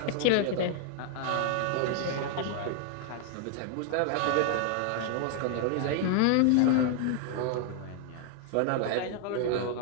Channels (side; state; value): both; different; correlation 0.00